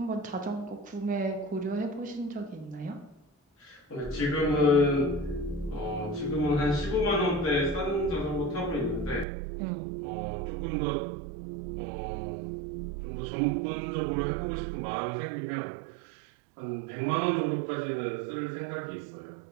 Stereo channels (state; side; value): drops out; left; at 9.2 s